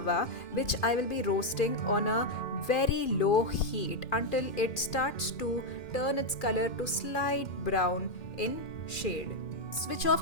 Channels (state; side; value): late; right; 2.4 ms